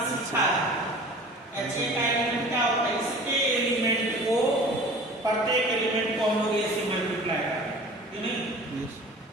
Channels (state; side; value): normal; both; correlation 0.43